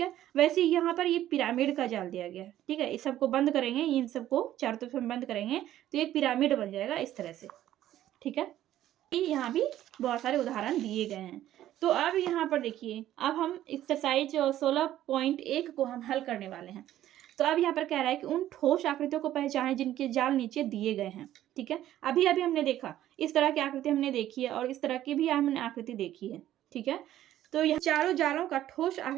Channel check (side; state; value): left; quieter; 12.9 dB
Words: वैसे यहाँ पर ये पिरामिड का जाल दिया गया है। ठीक है, इस सबको बंद करेंगे, इन सबको चारों तरफ हम बंद करेंगे तो एक पिरामिड बन जाएगा इस तरह से। ठीक है, यहाँ भी बहुत सारे उदाहरण दिए गए हैं। तो अब यहाँ पर देखिए, अब हम एक्सरसाइज 16.1 को हम हल करने वाले हैं। तो अब यहाँ पर कह रहा है कि उन ठोस आकृतियों को पहचानें जिनके जाल नीचे दिए गए हैं। ठीक है, अभी अभी हमने देखा इस तरह की आकृति हमने देखी है और इस तरह की भी हमने आकृति देखी है। ठीक है, तो यह चारों जालों का ठोस